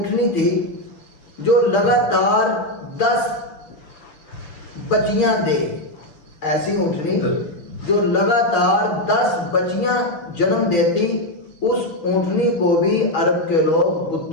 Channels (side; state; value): right; late; 6.6 ms